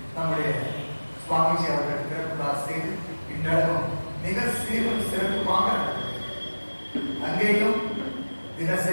நம்முடைய சுவாமிஜி அவர்கள் திறப்புதா செய்து இன்றளவும் மிக சீரும் சிறப்புமாக அங்கேயும்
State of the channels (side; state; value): both; inverted; correlation -1.00